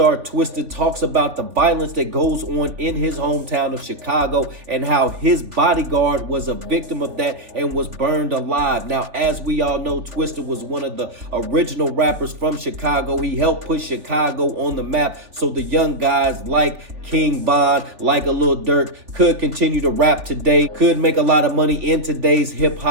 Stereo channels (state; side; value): late; left; 3.4 ms